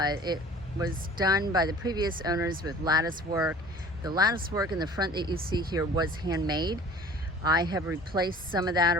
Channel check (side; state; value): both; normal; correlation 0.46